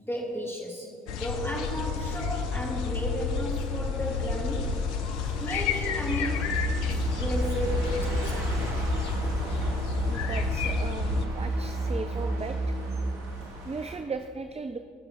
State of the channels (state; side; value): normal; both; correlation 0.58